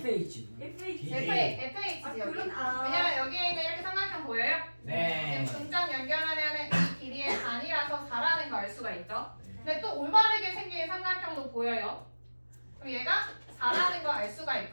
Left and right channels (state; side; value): inverted; both; correlation -1.00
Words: FH. FH지 아 여기. 그런 왜냐면 여기에 있는 이렇게 삼각형 보여요? 네. 지금 중점 연결하면은 이 길이의 반이라서 4라는 거 알 수가 있죠. 네. 근데 또 올바르게 생긴 삼각형도 보여요. 그럼 얘가 4라는 거 알 수가